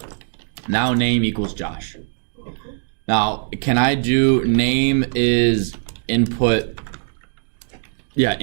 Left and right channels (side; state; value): left; silent; digital silence